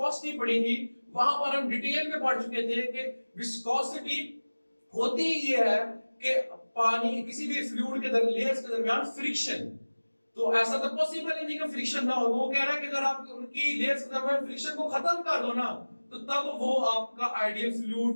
पढ़ी थी वहां पर हम डिटेल में पढ़ चुके थे कि विस्कोसिटी होती ये है कि पानी किसी भी फ्लूइड के लेयर्स के दरमियान फ्रिक्शन, तो ऐसा तो पॉसिबल ही नहीं कि फ्रिक्शन ना हो। वो कह रहा है कि अगर आप उनकी लेयर्स के दरमियान फ्रिक्शन को खत्म कर दो ना, तो तब वो आपका आइडियल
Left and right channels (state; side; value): inverted; both; correlation -1.00